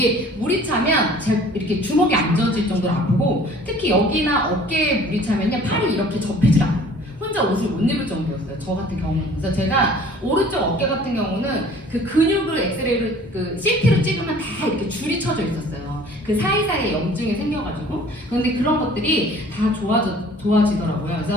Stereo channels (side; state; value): both; normal; correlation 0.50